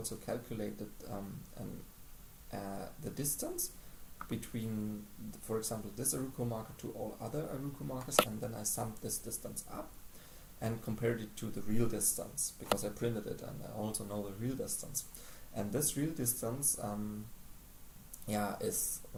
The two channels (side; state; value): both; identical; correlation 1.00